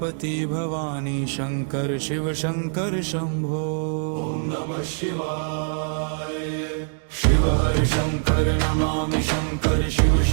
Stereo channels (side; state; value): left; silent; digital silence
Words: भवानी शंकर शिव शंकर शंभो ओम नमः शिवाय शिव हर शंकर नमामि शंकर शिव